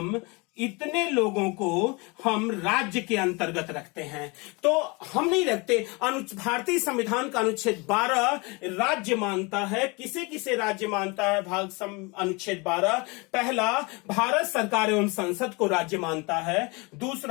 हम राज्य के अंतर्गत रखते हैं। तो हम नहीं रखते। भारतीय संविधान का अनुच्छेद 12 राज्य मानता है। किसे किसे राज्य मानता है? अनुच्छेद 12 पहला भारत सरकार एवं संसद को राज्य मानता है,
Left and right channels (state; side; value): quieter; right; 27.7 dB